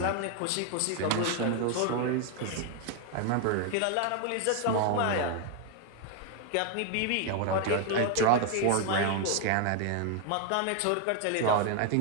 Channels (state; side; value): different; both; correlation 0.01